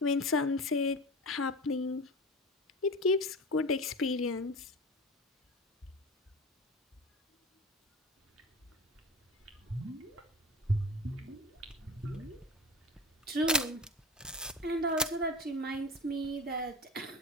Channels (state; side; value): normal; both; correlation 0.32